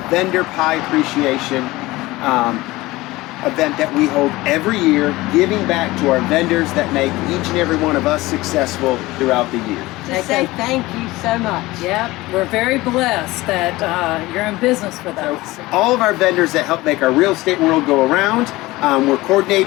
Vendor Pie Appreciation event that we hold every year, giving back to our vendors that make each and every one of us successful throughout the year. To say thank you so much. Yep, we're very blessed that you're in business with us. All of our vendors that help make our real estate world go around, we're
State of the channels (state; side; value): quieter; right; 19.5 dB